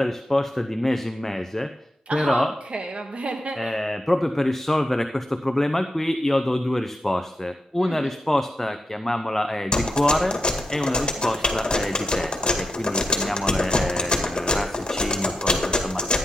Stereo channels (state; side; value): normal; both; correlation 0.86